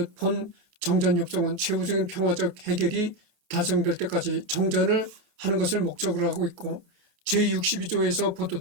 본 정전협정은 최후적인 평화적 해결이 달성될 때까지 정전을 하는 것을 목적으로 하고 있고 제62조에서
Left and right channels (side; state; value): left; late; 28 ms